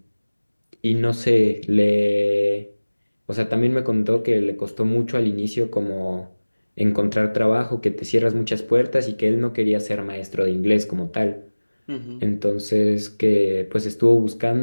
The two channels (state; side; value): inverted; both; correlation -1.00